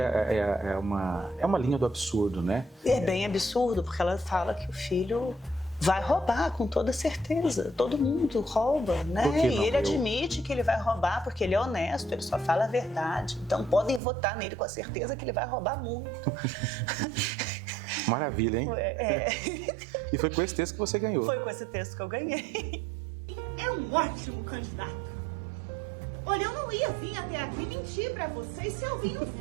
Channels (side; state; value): left; drops out; at 14.0 s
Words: uma linha do absurdo, né? É bem absurdo, porque ela fala que o filho vai roubar, com toda certeza. Todo mundo rouba, né? E ele admite que ele vai roubar porque ele é honesto, ele só fala a verdade. Então podem votar nele com a certeza que ele vai roubar muito. Maravilha, hein? E foi com esse texto que você ganhou. Foi com esse texto que eu ganhei. É um ótimo candidato. Olha, eu não ia vir até aqui mentir pra vocês se eu vim não